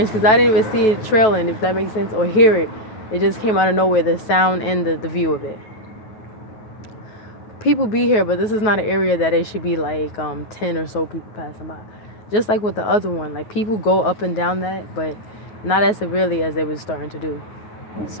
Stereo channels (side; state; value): right; late; 9.3 ms